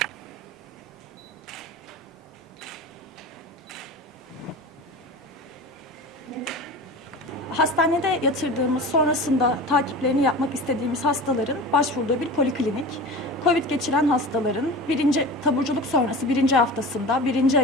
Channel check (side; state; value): both; normal; correlation 0.33